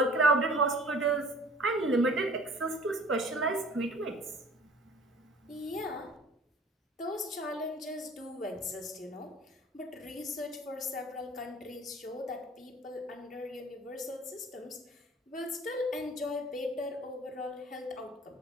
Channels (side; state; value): both; normal; correlation 0.48